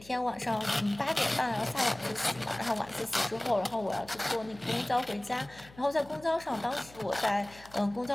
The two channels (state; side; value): noise; left; hum, 22 dB below the sound